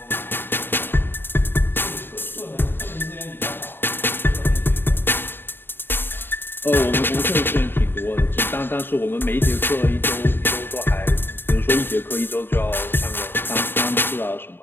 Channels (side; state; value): right; late; 0.10 ms